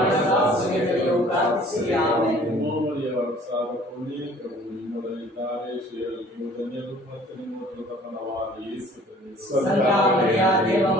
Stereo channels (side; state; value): both; normal; correlation 0.52